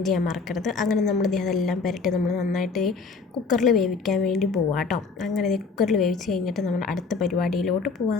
ചെയ്യാൻ മറക്കരുത്. അങ്ങനെ നമ്മൾ അതെല്ലാം പുരട്ടി നമ്മൾ നന്നായിട്ട് കുക്കറിൽ വേവിക്കാൻ വേണ്ടി പോവാം കേട്ടോ. അങ്ങനെ കുക്കറിൽ വേവിച്ച് കഴിഞ്ഞിട്ട് നമ്മൾ അടുത്ത പരിപാടിയിലോട്ട്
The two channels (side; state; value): right; quieter; 4.5 dB